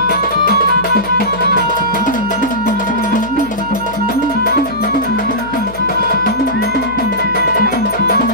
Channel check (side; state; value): left; noise; hum, 17 dB below the sound